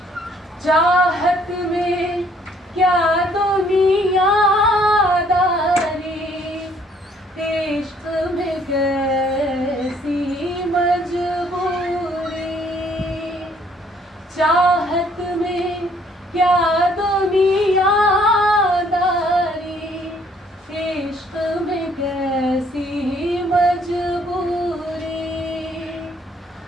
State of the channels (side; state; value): both; normal; correlation 0.63